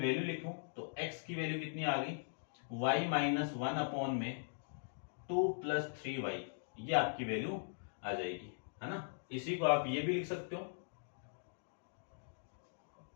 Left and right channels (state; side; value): silent; right; digital silence